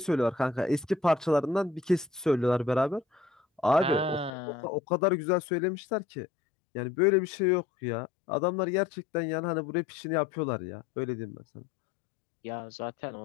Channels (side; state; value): right; drops out; at 4.3 s